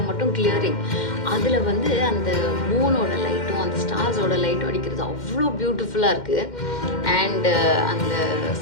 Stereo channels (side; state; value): right; late; 2.1 ms